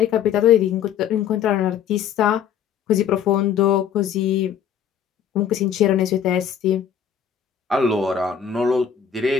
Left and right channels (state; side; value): quieter; right; 8.4 dB